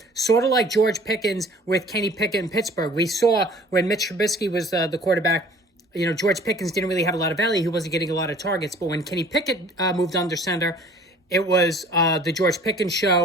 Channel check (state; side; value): normal; both; correlation 0.51